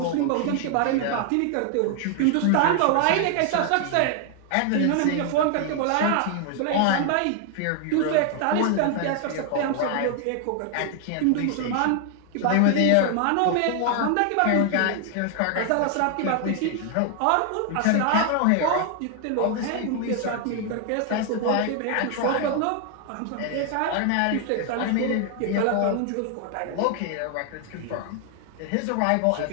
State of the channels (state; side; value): different; both; correlation 0.00